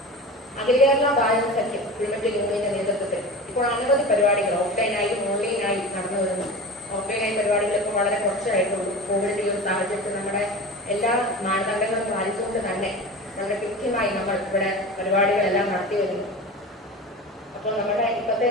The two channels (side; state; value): both; normal; correlation 0.32